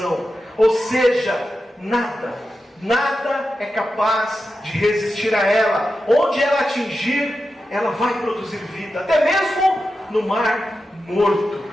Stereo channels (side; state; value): both; normal; correlation 0.91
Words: Ou seja, nada é capaz de resistir a ela. Onde ela atingir, ela vai produzir vida, até mesmo no Mar Morto.